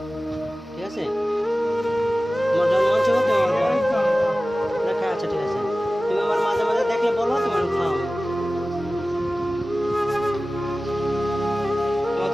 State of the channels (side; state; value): both; normal; correlation 0.96